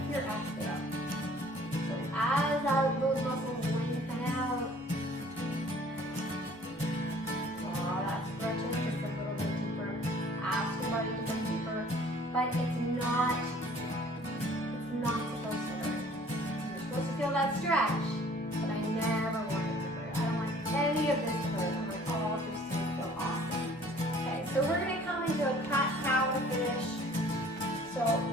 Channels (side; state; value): both; normal; correlation 0.54